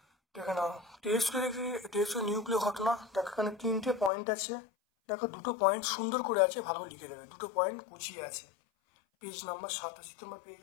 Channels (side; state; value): right; drops out; at 4.1 s